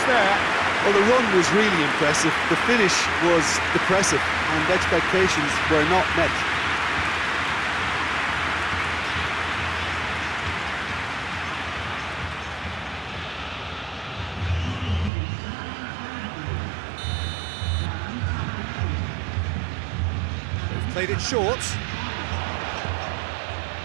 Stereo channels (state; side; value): drops out; left; at 15.1 s